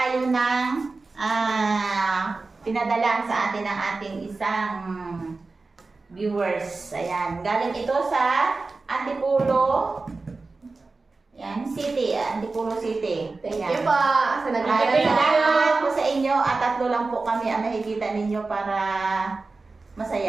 ng pinadala sa atin ng ating isang viewers. Ayan, galing ito sa Antipolo City. Antipolo City. Thank you po. Salamat po sa inyo at tatlo lang po kami ang nakikita ninyo para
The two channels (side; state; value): left; quieter; 3.7 dB